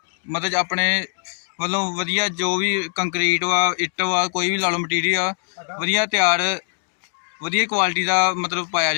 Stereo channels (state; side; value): silent; right; digital silence